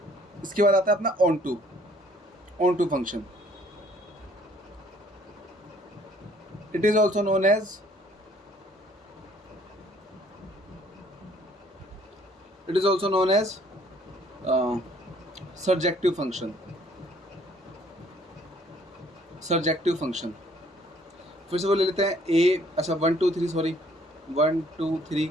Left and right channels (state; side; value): normal; both; correlation 0.60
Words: इसके बाद आता है अपना onto function. It is also known as surjective function. फिर से वो ले लेते हैं अच्छा 1 2 3 सॉरी 1 2 3,